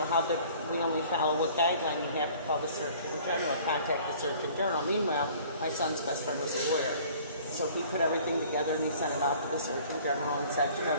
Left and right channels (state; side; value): inverted; both; correlation -0.51